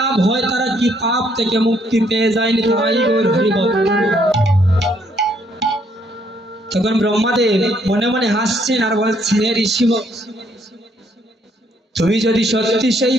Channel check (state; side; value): normal; both; correlation 0.69